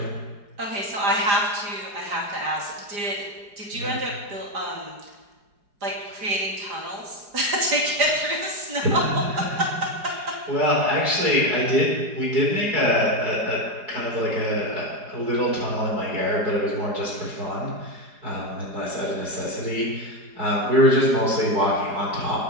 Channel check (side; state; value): left; late; 4.9 ms